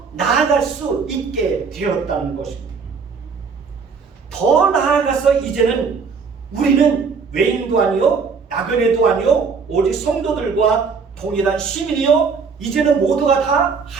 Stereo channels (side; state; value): left; quieter; 5.4 dB